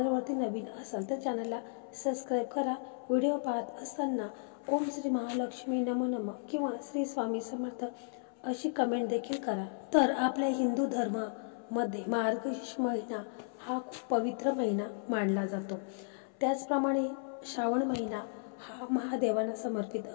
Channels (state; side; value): silent; right; 55 dB below the other